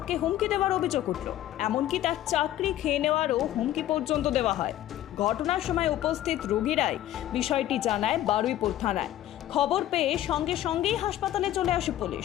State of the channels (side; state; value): right; quieter; 13.3 dB